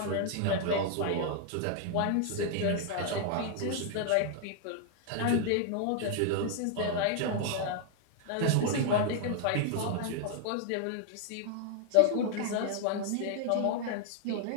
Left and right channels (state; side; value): different; both; correlation 0.00